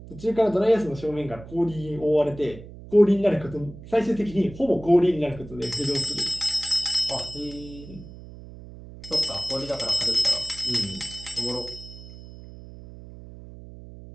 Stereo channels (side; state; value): right; noise; hum, 16 dB below the sound